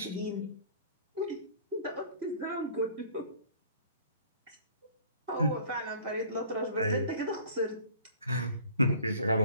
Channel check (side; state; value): both; inverted; correlation -0.49